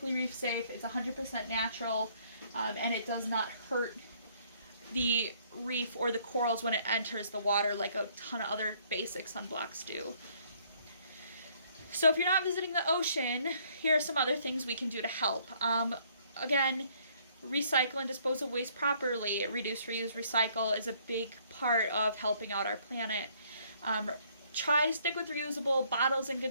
reef safe. It's 100% natural, and it does not hurt the reef or the corals when it enters the water like a ton of other basic sunblocks do. So if you're not visiting the ocean, here are some other things we can do to help. Again, recycle and dispose of waste properly. Reduce, reuse, recycle is a big part of helping out our planet. Try to stick with reusable bottles and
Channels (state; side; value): inverted; both; correlation -0.64